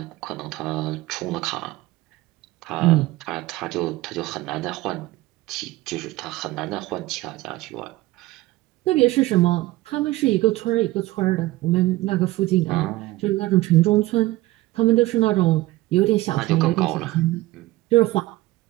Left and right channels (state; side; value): quieter; left; 18.3 dB